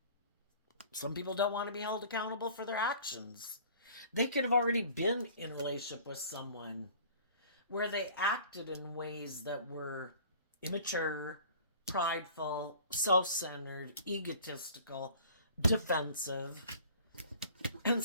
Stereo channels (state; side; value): inverted; both; correlation -0.48